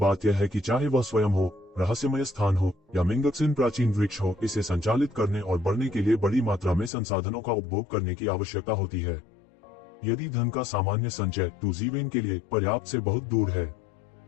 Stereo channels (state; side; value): drops out; right; at 6.9 s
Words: यह है कि चाहे वह स्वयं हो, रहस्यमय स्थान हो या मिंगक्सिन प्राचीन वृक्ष हो, इसे संचालित करने और बढ़ने के लिए बड़ी मात्रा में संसाधनों का उपभोग करने की आवश्यकता होती है। यदि धन का सामान्य संचय येज़िवेन के लिए पर्याप्त से बहुत दूर है।